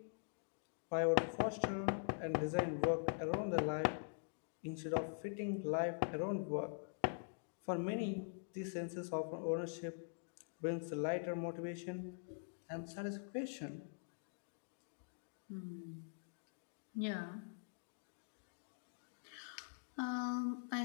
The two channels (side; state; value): right; silent; digital silence